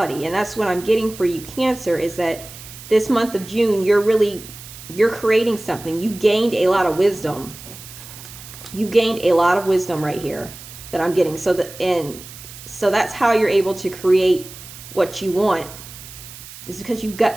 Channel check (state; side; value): noise; right; hiss, 16 dB below the sound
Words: And that's what I'm getting for you, Cancer, is that this month of June, you're creating something. You've gained a lot of wisdom. You gained a lot of wisdom right here that I'm getting. So that's how you're able to create what you want. It's because you've